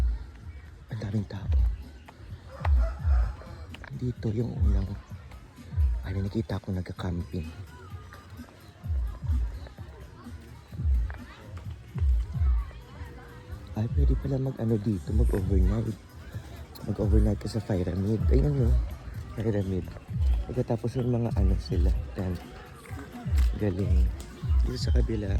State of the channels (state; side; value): identical; both; correlation 1.00